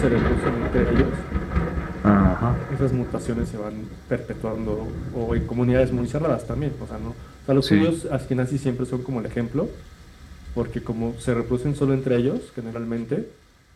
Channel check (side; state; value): both; identical; correlation 1.00